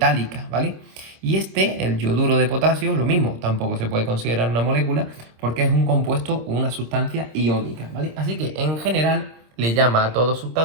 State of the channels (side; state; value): left; late; 26 ms